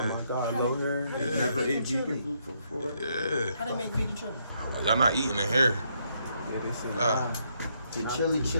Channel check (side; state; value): both; inverted; correlation -0.75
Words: my guy low hair. Never ate vegan food before. Yeah. How they make vegan chili? Y'all not eating in here. Yeah, they say The